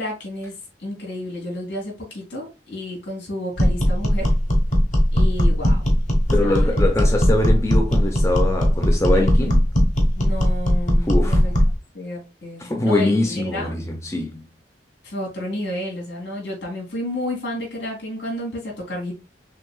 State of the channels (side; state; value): both; normal; correlation 0.90